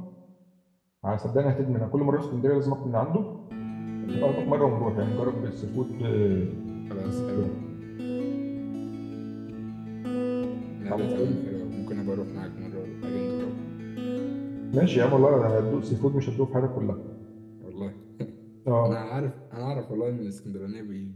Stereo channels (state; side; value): identical; both; correlation 1.00